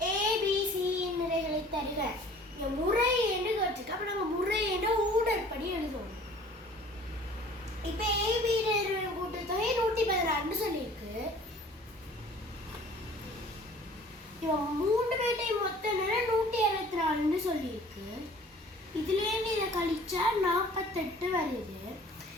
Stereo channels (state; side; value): normal; both; correlation 0.50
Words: ஏபிசியின் நிறைகளை தருக. முறை என்று கேட்டிருக்கு. அப்போ நம்ம முறை என்ற ஊடற்படி எழுதுவோம். இப்போ ஏபி கூட்டுத்தொகை 116 சொல்லியிருக்கு. இவன் 3 பேர்ட்டையும் மொத்த நேரம் 164 சொல்லியிருக்கு. இதுலேருந்து இதை கழிச்சா 48 வருது.